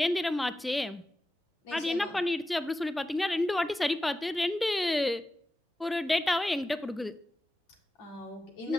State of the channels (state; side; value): normal; both; correlation 0.94